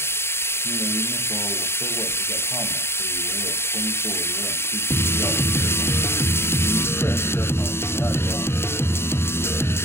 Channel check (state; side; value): late; right; 0.12 ms